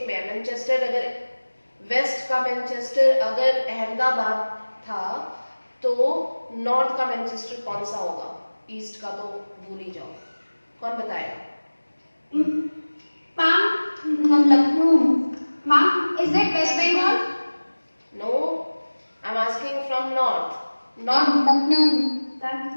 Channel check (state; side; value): inverted; both; correlation -1.00